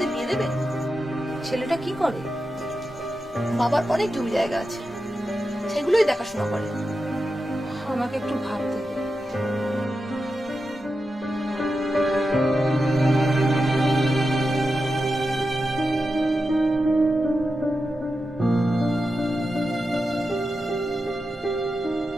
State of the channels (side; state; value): both; normal; correlation 0.90